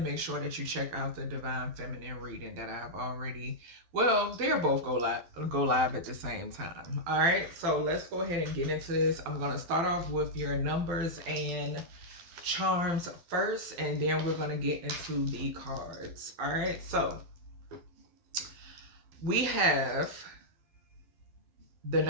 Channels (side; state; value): left; late; 12 ms